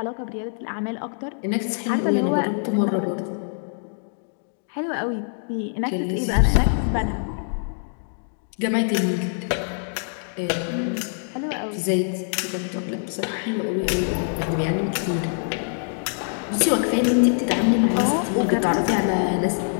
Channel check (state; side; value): silent; right; digital silence